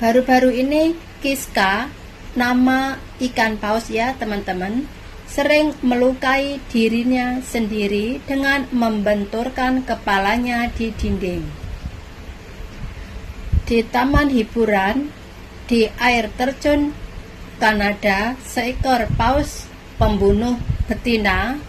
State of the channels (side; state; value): both; identical; correlation 1.00